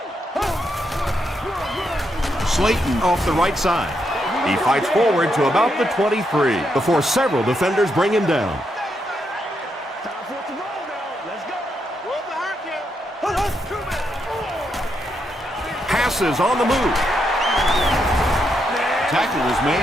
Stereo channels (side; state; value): both; normal; correlation 0.80